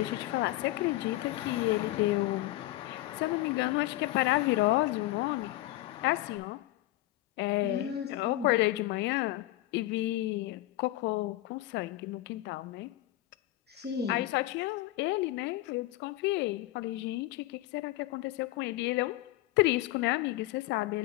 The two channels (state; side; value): quieter; right; 16.8 dB